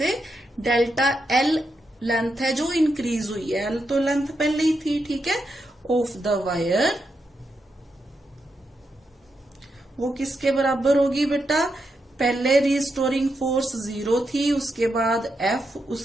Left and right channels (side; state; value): both; normal; correlation 0.84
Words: डेल्टा एल लेंथ है जो इंक्रीज हुई है, एल तो लेंथ पहले ही थी, ठीक है, ऑफ द वायर, वो किसके बराबर होगी बेटा? पहले रिस्टोरिंग फोर्स 0 थी, उसके बाद एफ,